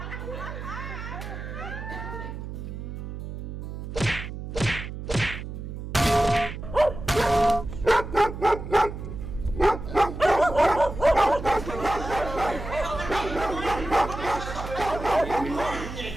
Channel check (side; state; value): right; noise; hum, 8 dB below the sound